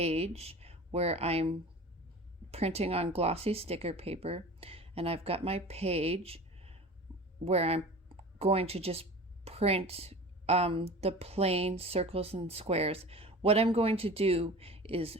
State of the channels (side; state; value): both; normal; correlation 0.37